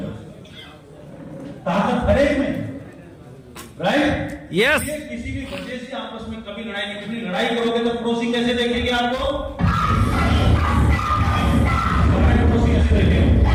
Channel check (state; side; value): identical; both; correlation 1.00